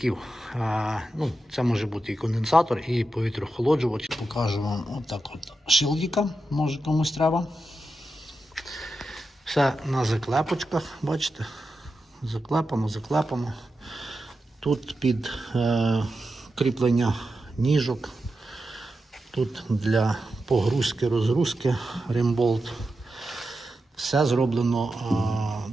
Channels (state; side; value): normal; both; correlation 0.89